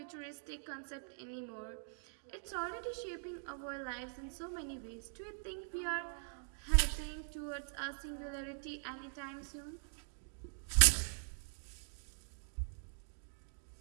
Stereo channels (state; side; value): silent; left; digital silence